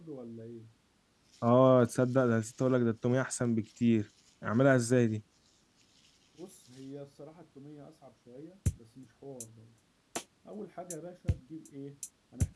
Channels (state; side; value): identical; both; correlation 1.00